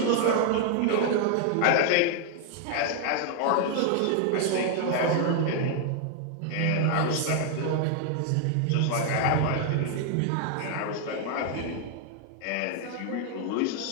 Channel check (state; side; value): different; both; correlation 0.00